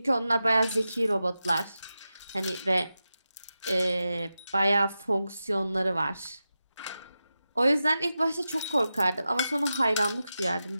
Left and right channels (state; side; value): inverted; both; correlation -0.91